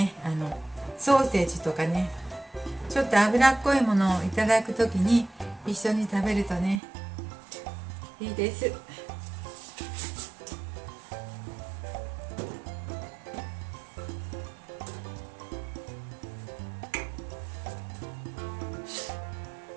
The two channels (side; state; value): left; drops out; at 6.8 s